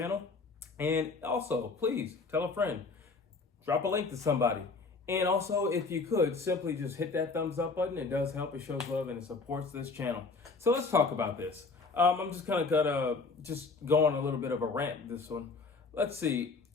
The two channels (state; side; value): quieter; right; 4.1 dB